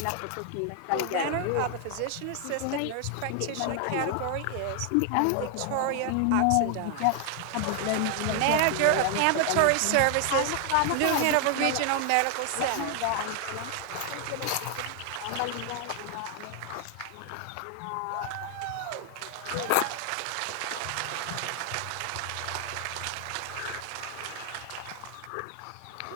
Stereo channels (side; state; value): both; different; correlation 0.00